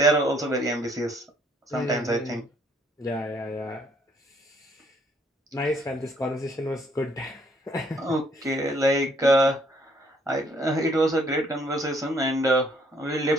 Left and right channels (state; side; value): normal; both; correlation 0.65